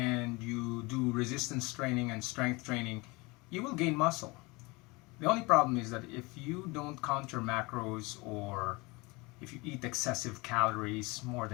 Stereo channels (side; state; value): right; quieter; 25.3 dB